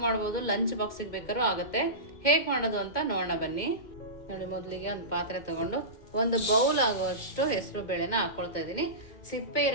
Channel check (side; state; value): right; late; 2.1 ms